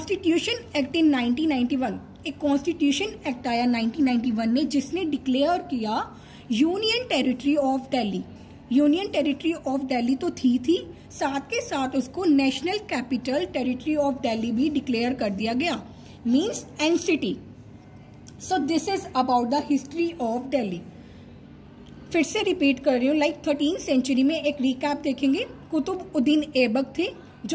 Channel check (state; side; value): identical; both; correlation 1.00